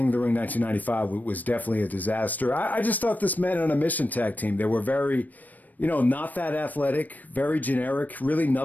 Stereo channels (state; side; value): late; right; 0.083 ms